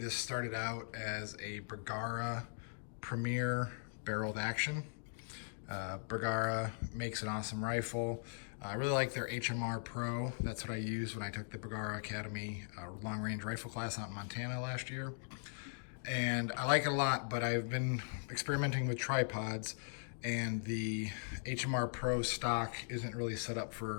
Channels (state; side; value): silent; right; digital silence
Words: started out as a Bergara Premier barreled action. Bergara makes an awesome rifle. I really like their HMR Pro. That's what I used when I took the Bergara Academy long range rifle class out in Montana last year. And I like it a lot, but I've been experimenting with tripods and the HMR Pro stock isn't really set up